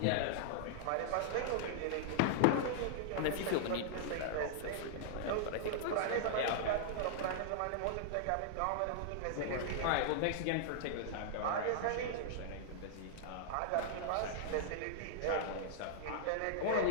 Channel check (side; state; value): both; different; correlation -0.01